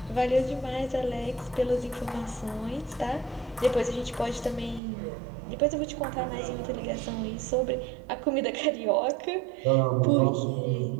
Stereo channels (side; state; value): left; drops out; at 4.8 s